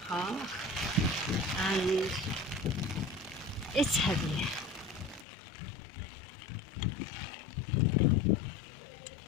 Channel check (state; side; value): drops out; right; at 5.2 s